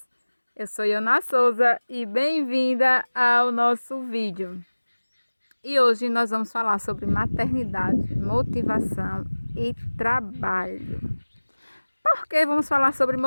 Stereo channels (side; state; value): both; inverted; correlation -1.00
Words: Eu sou Iona Souza e bem-vinda ao nosso vídeo. E hoje nós vamos falar sobre maternidade, motivação e trabalho. Por que vamos falar sobre